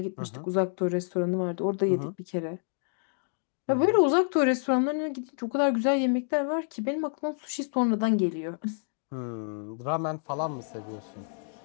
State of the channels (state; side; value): silent; right; digital silence